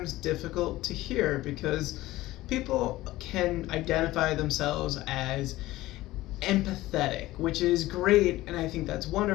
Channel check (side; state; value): right; quieter; 17.1 dB